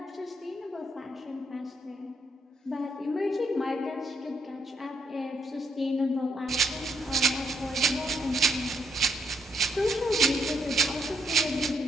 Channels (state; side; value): normal; both; correlation 0.75